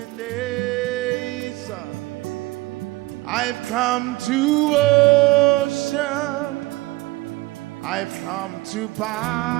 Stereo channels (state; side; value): quieter; left; 20.7 dB